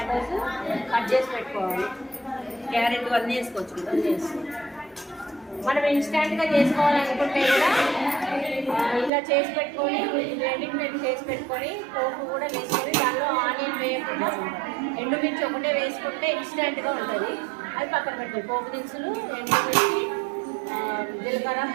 కట్ చేసి పెట్టుకోవాలి. క్యారెట్ అన్నీ వేసుకోవచ్చు. మనం ఇన్స్టెంట్గా చేసుకోవాలనుకుంటే కూడా ఇలా చేసి పెట్టుకొని రెండింటి చేసి పెట్టుకొని పోపు కూడా వేసుకొని దానిలో ఆనియన్ వేయకుండా ఎండుమిర్చి ఒకటే వేసుకుంటే ఇన్స్టెంట్గా ఉంటుంది. అది పక్కన పెట్టాలి. పోపు దినుసులు, ఎండుమిర్చి, జీలకర్ర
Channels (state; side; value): drops out; left; at 9.1 s